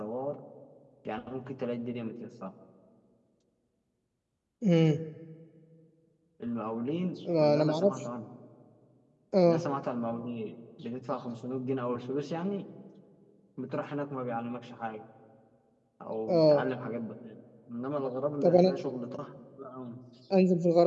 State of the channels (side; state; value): both; identical; correlation 1.00